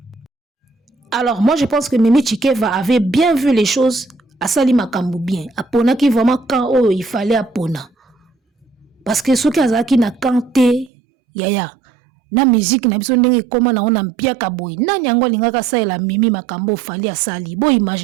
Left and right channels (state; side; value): drops out; left; at 10.9 s